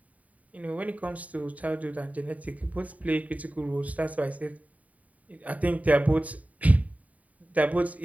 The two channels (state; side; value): late; left; 0.070 ms